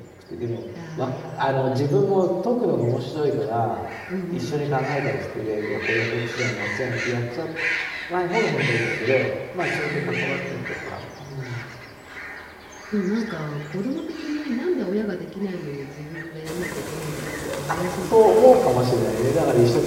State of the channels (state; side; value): identical; both; correlation 1.00